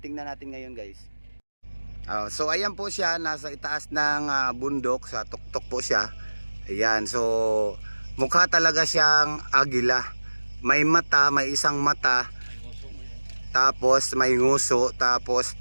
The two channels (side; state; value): both; inverted; correlation -1.00